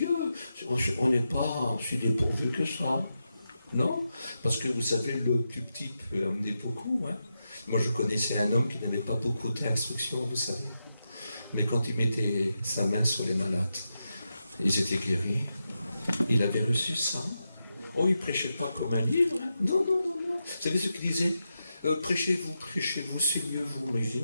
On n'est pas si dépourvu que ça. Non? Parce que vous savez, le plus petit peut amener beaucoup. Hein? Moi, je connaissais un homme qui n'avait pas beaucoup d'instructions, vous savez. Mais quand il mettait sa main sur les malades, ils étaient guéris. Il avait reçu ça. Oh, il ne prêchait pas comme un livre. Hein? Non. Vous savez ce qu'il disait? Prêchez-vous, saignez-vous. Mais je dis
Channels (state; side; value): inverted; both; correlation -0.88